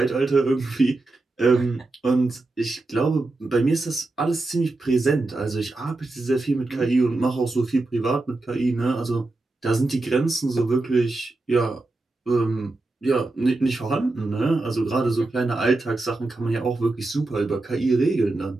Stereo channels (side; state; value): left; quieter; 3.1 dB